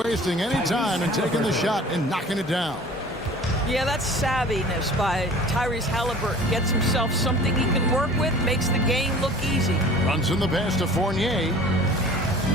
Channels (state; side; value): normal; both; correlation 0.45